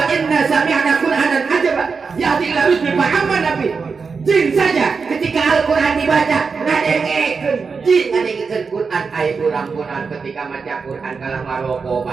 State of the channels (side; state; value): left; quieter; 5.1 dB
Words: inna sami'na qur'anan ajaba yahdi ila rusdi fa'amanna bihi. Jin saja ketika Al-Quran dibaca ngadengekeun jin ngadengekeun Quran aya urang-urang ketika maca Quran kalah maroko